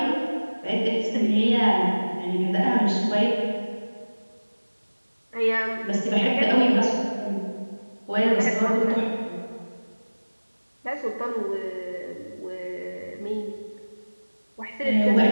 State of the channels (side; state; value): both; inverted; correlation -1.00